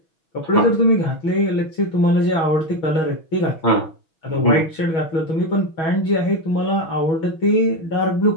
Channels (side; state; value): right; late; 6.2 ms